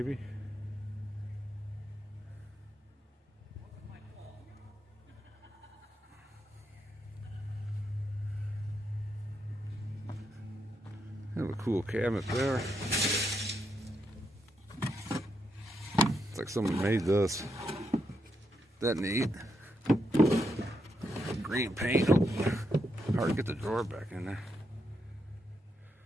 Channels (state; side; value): normal; both; correlation 0.81